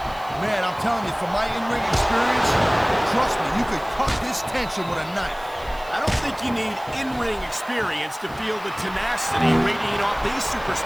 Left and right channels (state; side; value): noise; right; hiss, 24 dB below the sound